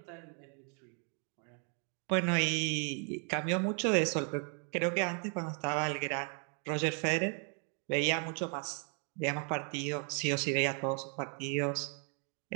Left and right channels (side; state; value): left; quieter; 39.9 dB